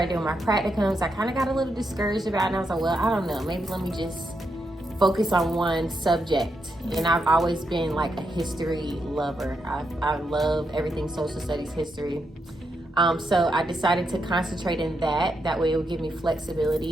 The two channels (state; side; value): normal; both; correlation 0.82